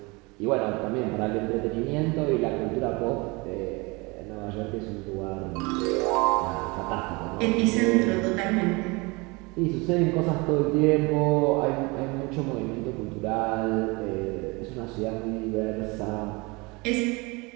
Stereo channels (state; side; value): quieter; left; 26.2 dB